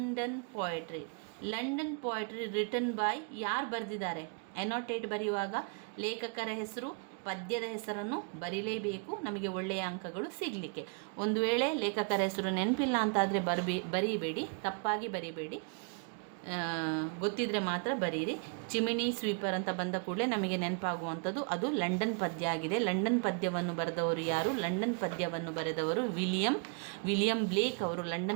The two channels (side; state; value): left; quieter; 37.9 dB